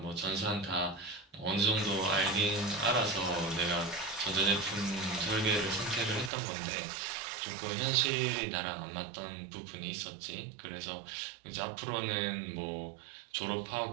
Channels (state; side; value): drops out; left; at 6.3 s